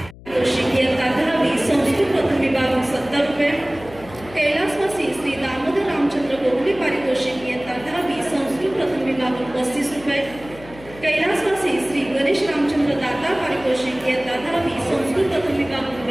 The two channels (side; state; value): left; noise; hum, 19 dB below the sound